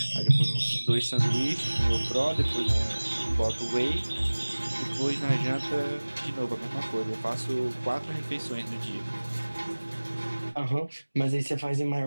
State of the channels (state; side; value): inverted; both; correlation -1.00